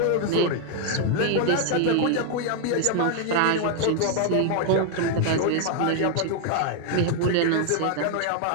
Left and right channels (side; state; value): both; different; correlation 0.00